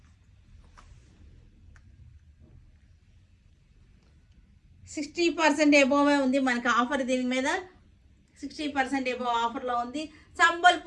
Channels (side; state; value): both; identical; correlation 1.00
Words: $60% ఎబోవే ఉంది మనకి ఆఫర్. దీని మీద 60% ఎబోవ్ ఆఫర్లో ఉంది.